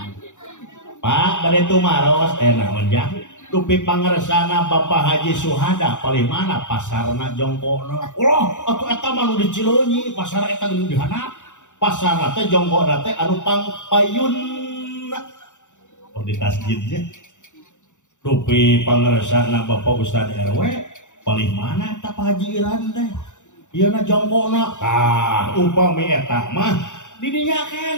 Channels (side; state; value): right; late; 0.85 ms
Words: Pak bade tumaros naon jah. Dupi pangaresana Bapak Haji Suhada paling mana pasarna jongkona. Allah atuh eta mah nu di Cileunyi pasar eta geus dihandap. Pasarna teh jongkona teh anu pangpayun. Oh di tasjidnya. Dupi pangaresana Bapak Ustad RW paling mana eta Pak Haji Iran teh. Ieu na jongkona. Tah upami eta mah di dinya